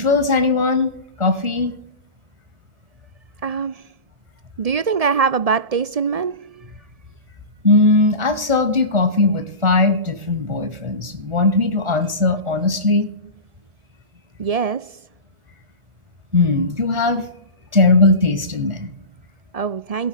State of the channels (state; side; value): late; left; 1.4 ms